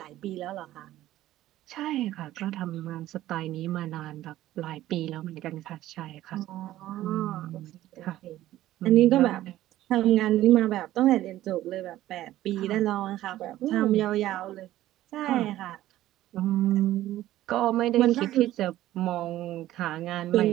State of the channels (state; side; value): quieter; left; 14.5 dB